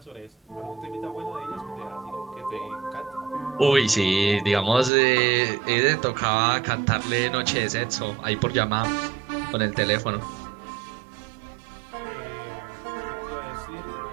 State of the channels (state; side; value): drops out; left; at 4.9 s